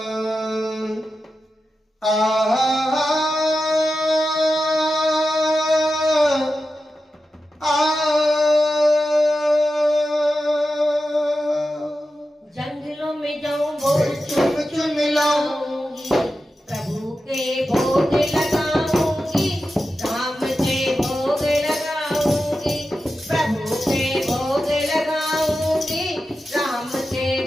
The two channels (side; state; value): both; normal; correlation 0.91